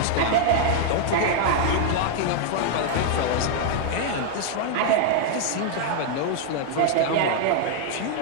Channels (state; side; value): different; both; correlation 0.00